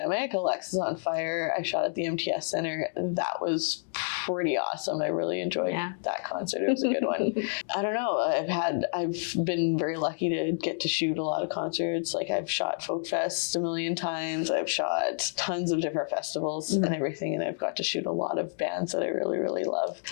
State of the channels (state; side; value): silent; right; digital silence